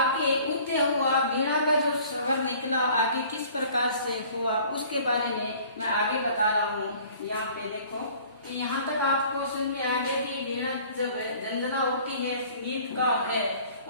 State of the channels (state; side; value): inverted; both; correlation -0.51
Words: उदय हुआ, वीणा का जो स्वर निकला आगे किस प्रकार से हुआ उसके बारे में मैं आगे बता रहा हूँ। यहाँ पे देखो कि यहाँ तक आपको समझ में आ गया कि वीणा जब झंझना होती है, संगीतकार है,